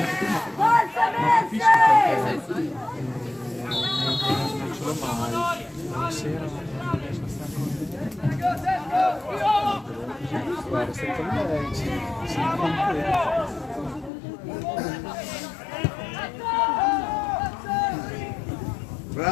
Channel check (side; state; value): right; drops out; at 14.1 s